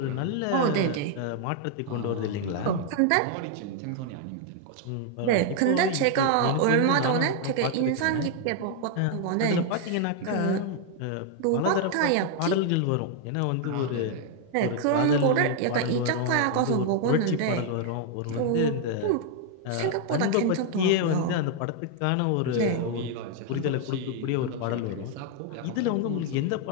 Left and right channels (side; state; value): both; different; correlation 0.00